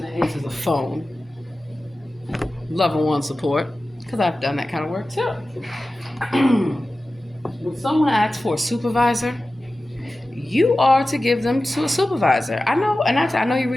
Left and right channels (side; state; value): both; normal; correlation 0.95